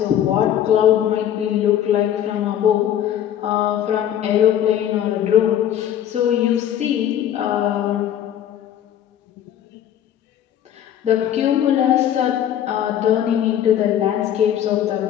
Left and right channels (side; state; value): right; quieter; 10.5 dB